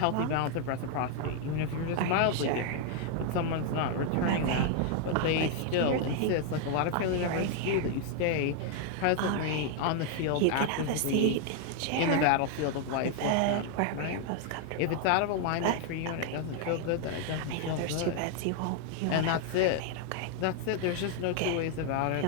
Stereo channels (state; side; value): different; both; correlation 0.00